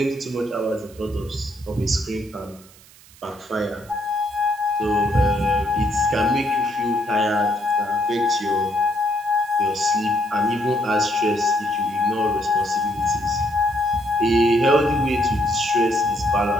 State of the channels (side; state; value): right; noise; hiss, 24 dB below the sound